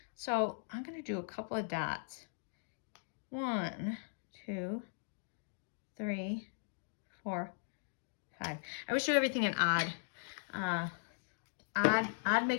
So I'm going to do a couple of dots. 1, 2, 3, 4, 5. I always do everything in odd. Odd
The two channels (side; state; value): right; silent; digital silence